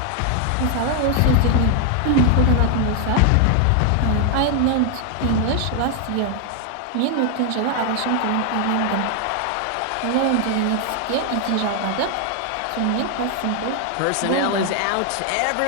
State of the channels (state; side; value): different; both; correlation 0.00